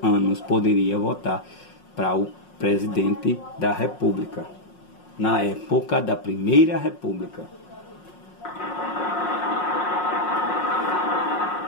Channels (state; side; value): late; right; 5.5 ms